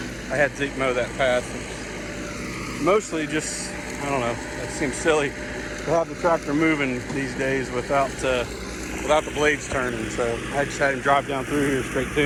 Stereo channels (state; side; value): identical; both; correlation 1.00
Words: I had Zeke mow that path. It's mostly just, I don't know, that seems silly to have the tractor moving these days without the blades turning. So I just had him drive down through here straight